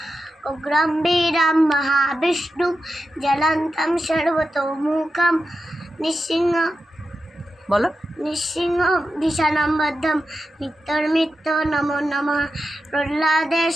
উগ্রম বীরম মহাবিষ্ণু, জলন্তম সর্বতোমুখম। নৃসিংহ বলো। নৃসিংহ ভীষণম বদ্ধম, মৃত্যুর্মৃত্য নমো নমঃ।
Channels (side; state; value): both; normal; correlation 0.90